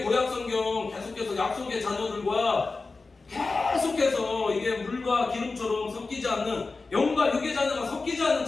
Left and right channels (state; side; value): quieter; right; 3.8 dB